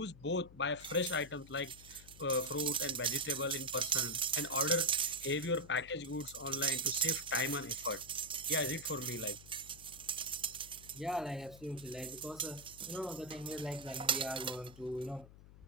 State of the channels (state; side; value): noise; left; hum, 19 dB below the sound